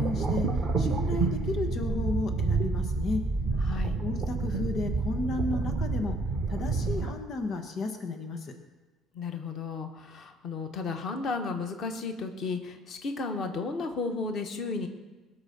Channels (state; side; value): normal; both; correlation 0.62